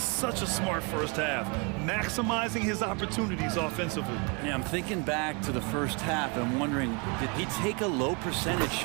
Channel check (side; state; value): left; quieter; 32.7 dB